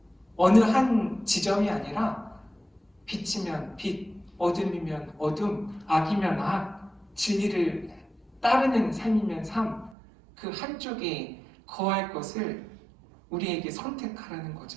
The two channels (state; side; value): drops out; left; at 10.0 s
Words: 어느 한 지점이 아니라 빛이면 빛, 어둠이면 어둠, 악이면 악, 진리를 따르는 삶이면 삶, 그 한쪽에 거할 것을 우리에게 선택하라는